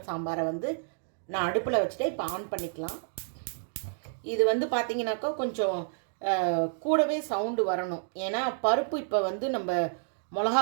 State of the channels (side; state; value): left; silent; digital silence